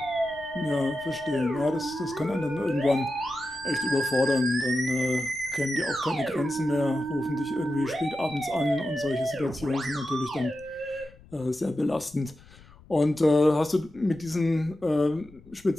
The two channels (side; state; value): left; noise; rumble, 24 dB below the sound